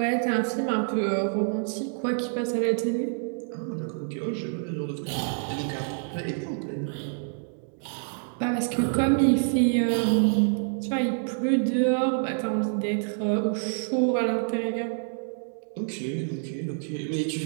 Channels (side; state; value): left; silent; digital silence